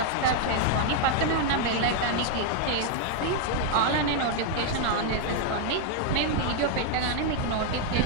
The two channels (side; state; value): both; different; correlation 0.00